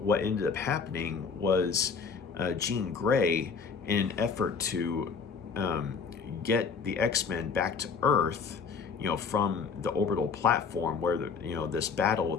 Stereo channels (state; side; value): quieter; right; 5.6 dB